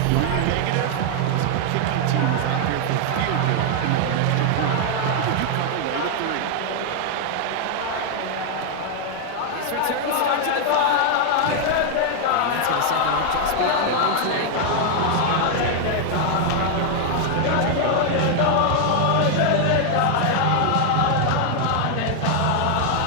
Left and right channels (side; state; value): both; different; correlation 0.00